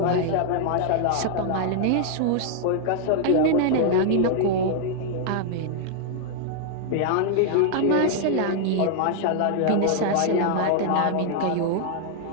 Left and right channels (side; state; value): both; different; correlation -0.01